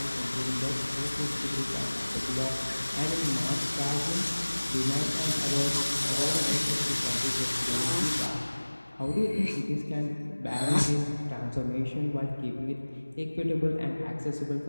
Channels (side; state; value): both; inverted; correlation -1.00